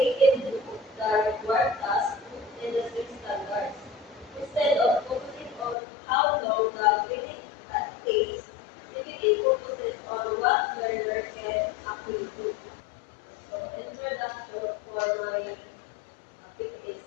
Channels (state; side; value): drops out; right; at 5.8 s